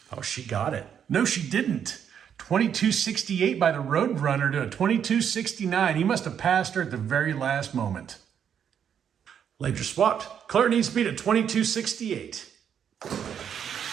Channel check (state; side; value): quieter; left; 8.4 dB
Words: Oh, she got it. No, she didn't. 2268 by the Roadrunner to a 2269. He must have passed her at the very last moment. Lanes are swapped. Claire needs to beat a 2268.